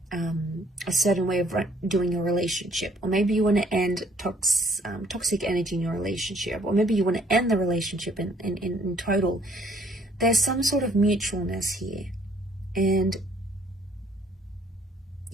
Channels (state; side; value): normal; both; correlation 0.62